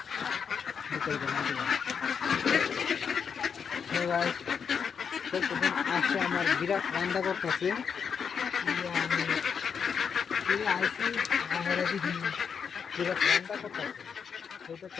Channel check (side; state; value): right; quieter; 6.7 dB